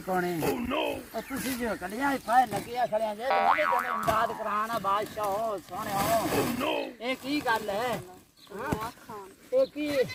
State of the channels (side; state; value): both; identical; correlation 1.00